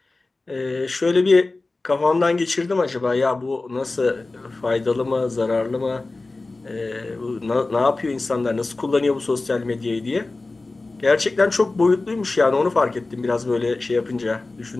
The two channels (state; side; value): quieter; right; 3.3 dB